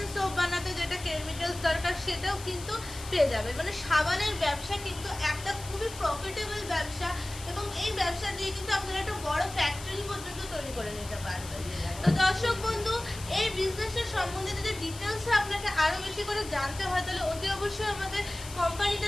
সোপ বানাতে যেটা কেমিক্যালস দরকার সেটাও কিন্তু পেয়ে যাবে। মানে সাবানের ব্যবসা কিন্তু একটা খুবই প্রফিটেবল ব্যবসা এবং এই ব্যবসা দিয়ে কিন্তু আপনারা একটা বড় ফ্যাক্টরি পর্যন্ত তৈরি করে নিতে পারবেন। তো দর্শক বন্ধু, এই বিজনেসের সম্বন্ধে যদি ডিটেলসে আপনাকে আরও বেশি করে জানতে হয়, তাহলে অতি অবশ্যই আমাদের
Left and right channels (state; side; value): noise; left; hiss, 14 dB below the sound